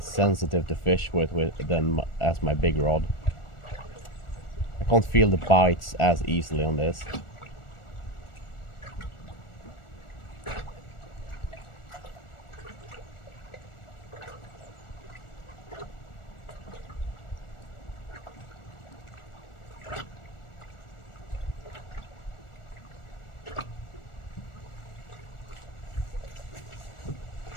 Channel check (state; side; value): late; right; 1.4 ms